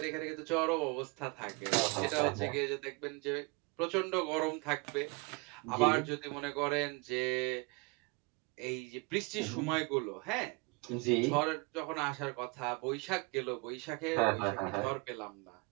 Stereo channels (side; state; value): left; quieter; 28.9 dB